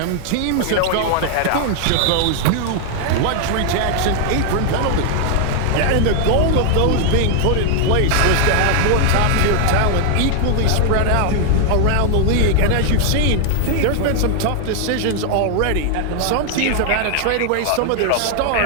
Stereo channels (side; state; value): both; different; correlation 0.00